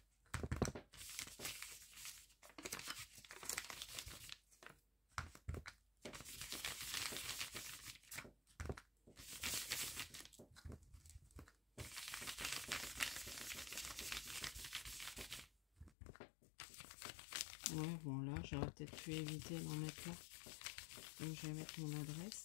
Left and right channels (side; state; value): right; drops out; at 16.0 s